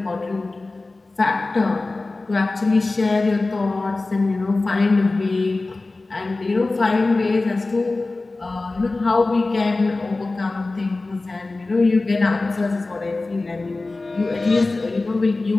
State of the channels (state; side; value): quieter; right; 3.3 dB